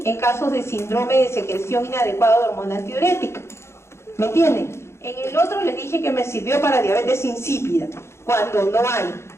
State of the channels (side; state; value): right; late; 0.13 ms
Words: en casos de síndrome de secreción inadecuada de hormona antidiurética. ¿Me entienden? En el otro les dije que me sirvió para diabetes insípida, cuando no hay